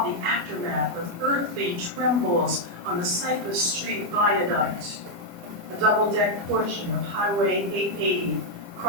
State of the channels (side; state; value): left; late; 28 ms